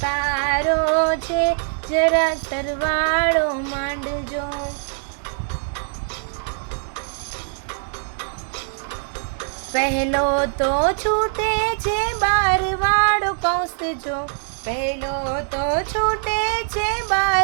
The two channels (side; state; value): left; silent; digital silence